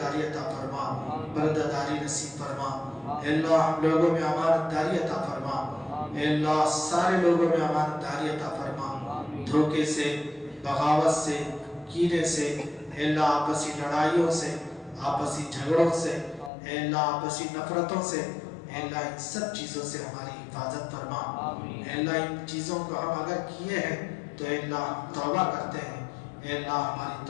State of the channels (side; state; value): right; drops out; at 16.5 s